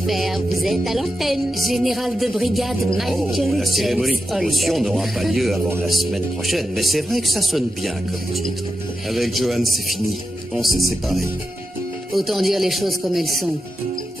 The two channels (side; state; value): both; normal; correlation 0.89